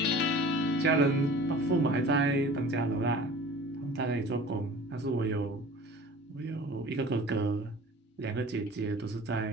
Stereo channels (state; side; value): normal; both; correlation 0.43